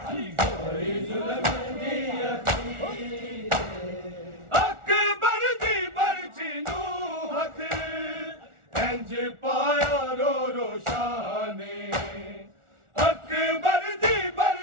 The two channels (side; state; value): left; late; 1.4 ms